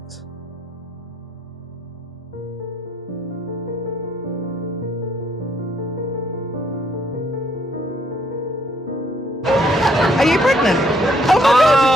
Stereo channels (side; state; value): both; normal; correlation 0.68